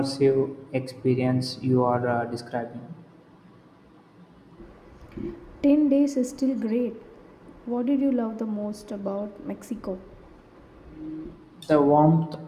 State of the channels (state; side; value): identical; both; correlation 1.00